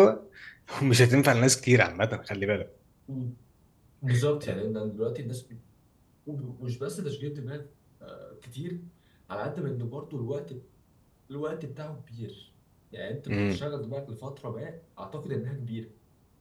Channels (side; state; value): both; identical; correlation 1.00